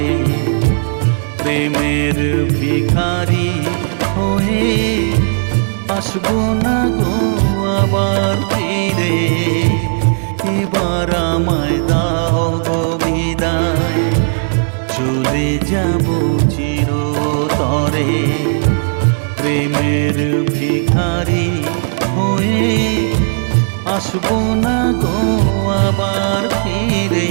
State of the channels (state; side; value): silent; left; digital silence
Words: প্রেমের ভিখারি হয়ে আসবো না গো আবার ফিরে। এবার আমায় দাও গো বিদায়, চলে যাব চিরতরে। প্রেমের ভিখারি হয়ে আসবো না গো আবার ফিরে।